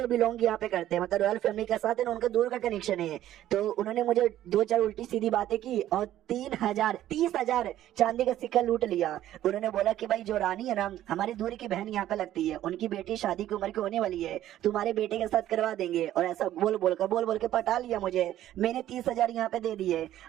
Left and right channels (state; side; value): quieter; left; 12.9 dB